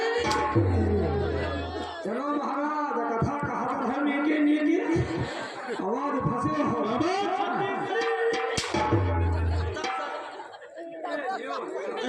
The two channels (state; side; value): identical; both; correlation 1.00